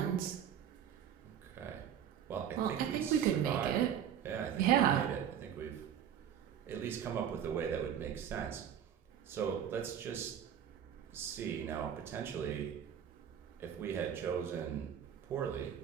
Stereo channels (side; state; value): left; quieter; 9.2 dB